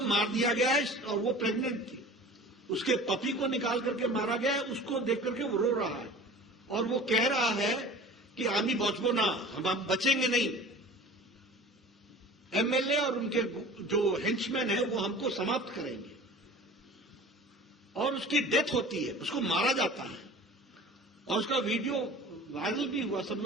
मार दिया गया है और वो प्रेग्नेंट थी। उसके पपी को निकाल करके मारा गया है, उसको देख करके वो रो रहा है और वो कह रहा है कि आमी बचबो ना, हम बचेंगे नहीं। एमएलए और उनके जो हेंचमैन है वो हमको समाप्त करेंगे। और उसकी डेथ होती है, उसको मारा जाता है और उसका वीडियो वायरल भी हुआ, सब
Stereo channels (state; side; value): normal; both; correlation 0.41